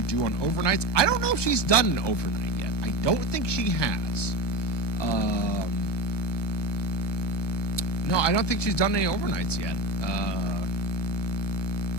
do on overnights? I don't know if she's done an overnight yet. I don't think she has. No, I don't think she's done any overnights yet.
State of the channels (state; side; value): late; right; 1.2 ms